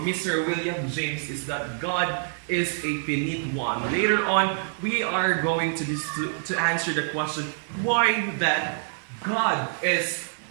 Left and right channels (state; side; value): silent; left; 60 dB below the other